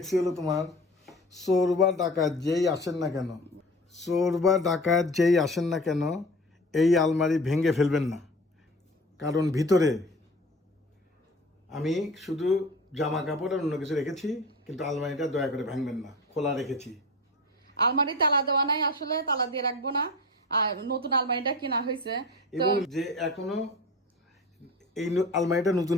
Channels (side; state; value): both; normal; correlation 0.36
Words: হলো তোমার, চোর বা ডাকাত যেই আসেন না কেন, চোর বা ডাকাত যেই আসেন না কেন এই আলমারি ভেঙে ফেলবেন না, কারণ ভিতরে আমি শুধু জামা কাপড় আর অন্য কিছু রেখেছি, কিন্তু আলমারিটা দয়া করে ভাঙবেন না, খোলা রেখেছি। আলমারি তালা দেওয়া নাই, আসলে তালা দিয়ে রাখবো না। আর নতুন আলমারিটা কেনা হয়েছে এবং যে এখনো এই আলমারিটা নতুন